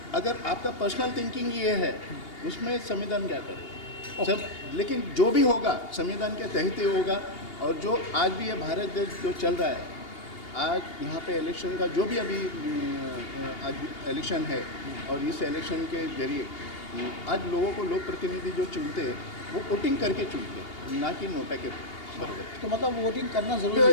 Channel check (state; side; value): late; right; 2.8 ms